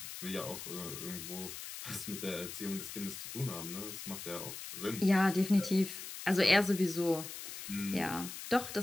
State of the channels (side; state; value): left; noise; hiss, 9 dB below the sound